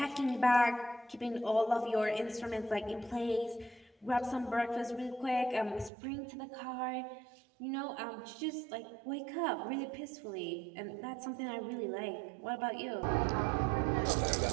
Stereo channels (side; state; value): left; drops out; at 5.9 s